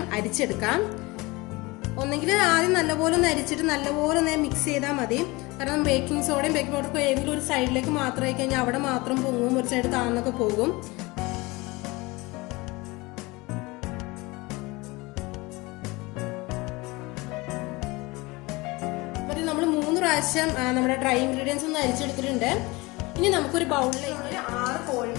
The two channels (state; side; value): quieter; right; 23.4 dB